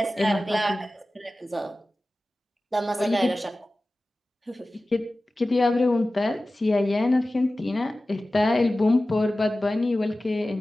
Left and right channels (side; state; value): both; normal; correlation 0.96